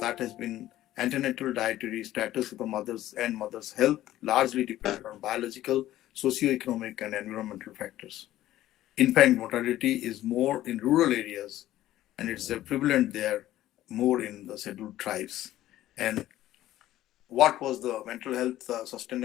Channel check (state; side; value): quieter; right; 14.2 dB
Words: that has been antenatal dietary status of the mothers and mother's health, largely dependent on biological, socio-economic, and environmental factors. Infant mortality is more in rural areas, and it's prevalent there more in the scheduled tribes. And what was the mental health